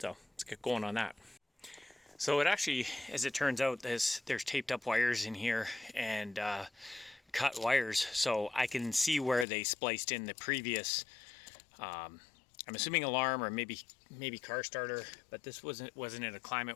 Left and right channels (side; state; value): right; drops out; at 9.5 s